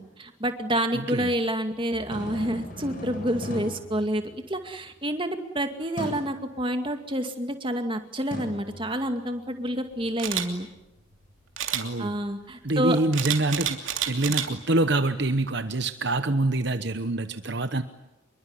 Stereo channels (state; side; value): normal; both; correlation 0.53